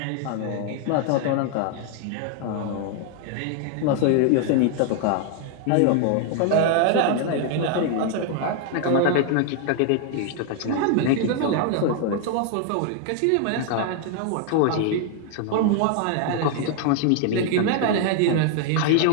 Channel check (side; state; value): both; different; correlation 0.00